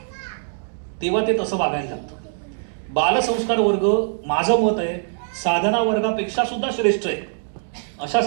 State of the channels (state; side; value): silent; left; digital silence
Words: तेव्हा ते तसं वागायला लागतं. बालसंस्कार वर्ग माझं मत आहे साधना वर्गापेक्षा सुद्धा श्रेष्ठ आहे.